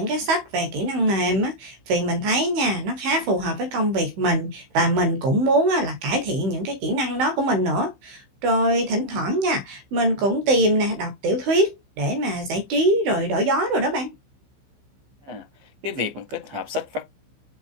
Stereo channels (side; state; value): left; late; 16 ms